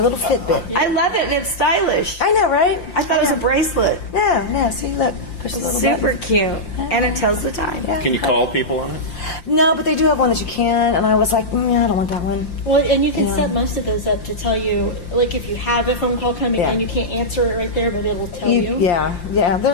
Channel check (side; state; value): right; late; 5.7 ms